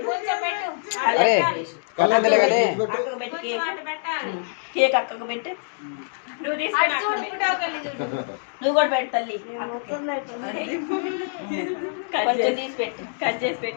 పెట్టి కేక్ అక్కకు పెట్టు నువ్వు కూడా పెట్టు తల్లి కొంచెం తీసి పెట్టు కట్ చేసి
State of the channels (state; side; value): silent; right; digital silence